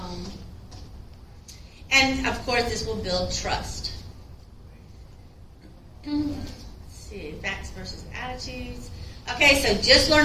And of course, this will build trust. Let's see, facts versus attitudes. Okay, so just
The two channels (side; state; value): both; identical; correlation 1.00